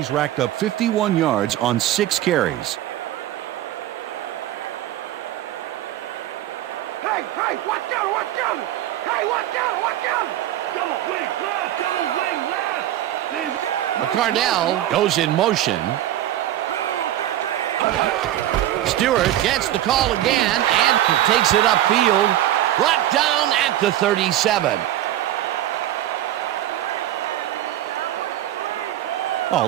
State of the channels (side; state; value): left; quieter; 13.1 dB